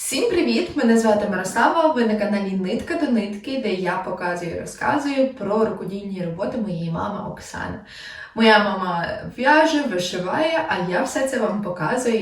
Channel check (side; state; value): both; identical; correlation 1.00